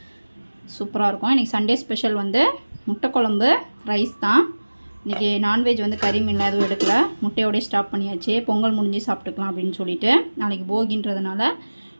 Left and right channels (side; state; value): both; inverted; correlation -1.00